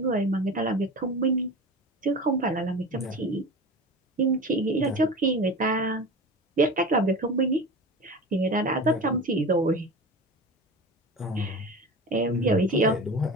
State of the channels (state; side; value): normal; both; correlation 0.31